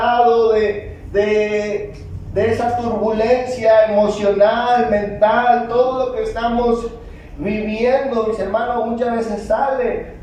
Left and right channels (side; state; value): both; identical; correlation 1.00